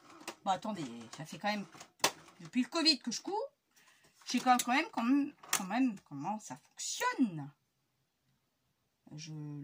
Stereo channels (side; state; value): both; identical; correlation 1.00